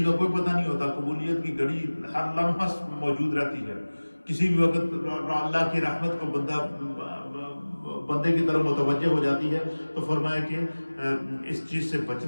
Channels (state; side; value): inverted; both; correlation -1.00